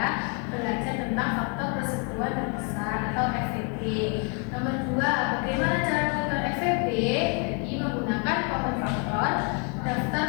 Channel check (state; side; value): quieter; right; 36.6 dB